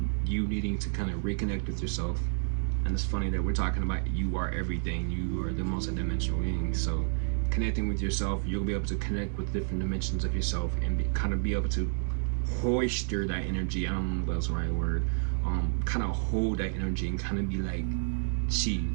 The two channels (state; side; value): silent; left; digital silence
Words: you needing to kind of reconnect with yourself. And it's funny that we're talking about you are everything. You are the multidimensional being. So connecting with yourself, you'll be able to connect with different dimensions of yourself and kind of be able to hoister that energy. I don't know if that's the right word. Kind of hold that energy and kind of be like chi,